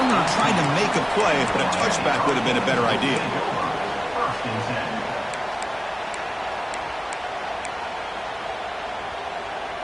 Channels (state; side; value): identical; both; correlation 1.00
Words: trying to make a play, but a touchback would have been a better idea.